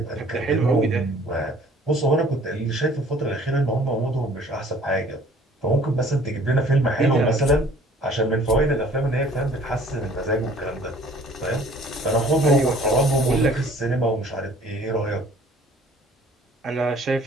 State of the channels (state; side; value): normal; both; correlation 0.54